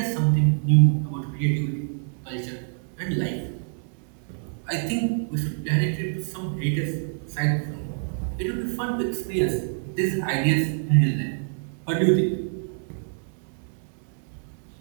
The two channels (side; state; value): left; silent; digital silence